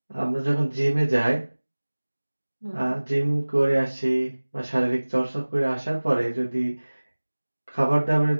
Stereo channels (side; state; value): both; inverted; correlation -1.00